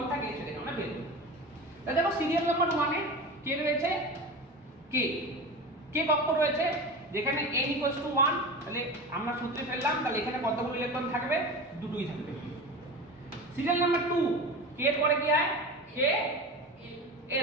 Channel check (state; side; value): normal; both; correlation 0.29